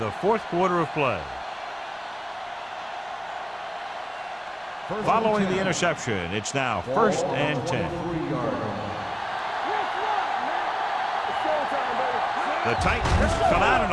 fourth quarter of play. Following the interception, it's now 1st and 10. The Titans come out in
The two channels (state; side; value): identical; both; correlation 1.00